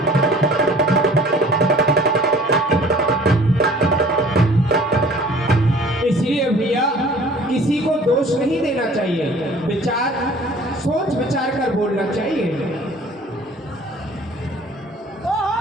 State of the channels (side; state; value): both; normal; correlation 0.50